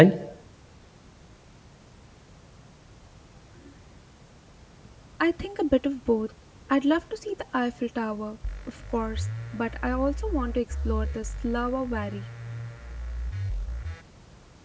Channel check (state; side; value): identical; both; correlation 1.00